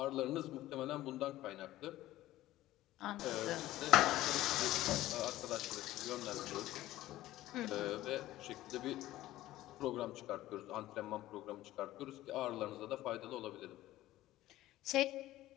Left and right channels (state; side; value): quieter; right; 15.5 dB